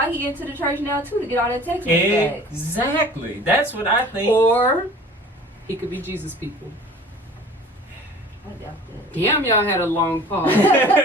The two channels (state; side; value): normal; both; correlation 0.45